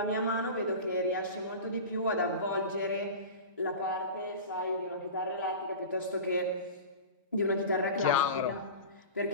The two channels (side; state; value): both; inverted; correlation -0.32